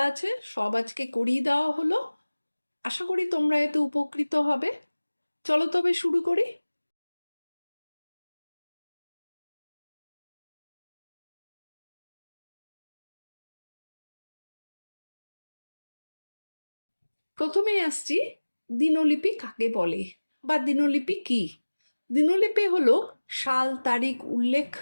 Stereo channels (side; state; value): both; inverted; correlation -1.00